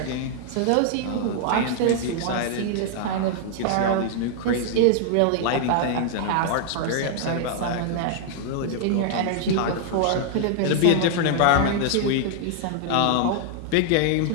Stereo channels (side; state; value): both; different; correlation -0.01